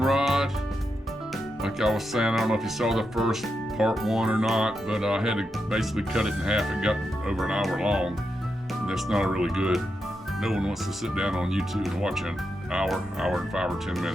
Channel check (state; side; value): normal; both; correlation 0.86